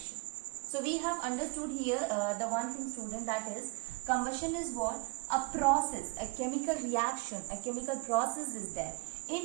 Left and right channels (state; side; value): quieter; left; 26.4 dB